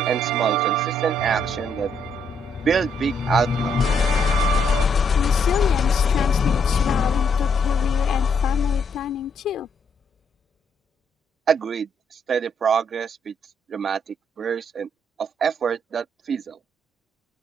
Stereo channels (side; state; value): both; normal; correlation 0.73